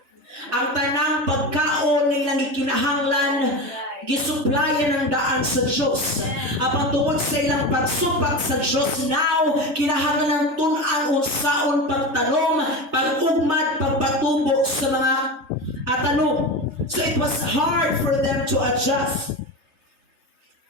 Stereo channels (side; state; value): left; late; 3.3 ms